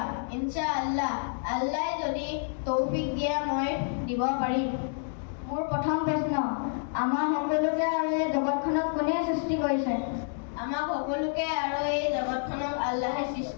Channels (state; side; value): silent; right; digital silence